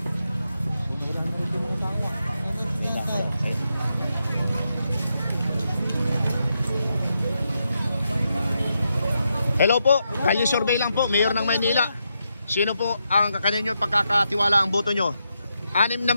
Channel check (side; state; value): both; inverted; correlation -0.83